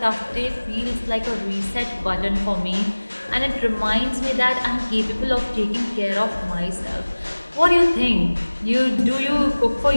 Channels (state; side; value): inverted; both; correlation -1.00